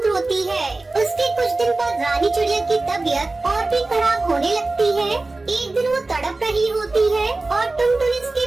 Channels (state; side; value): quieter; left; 3.2 dB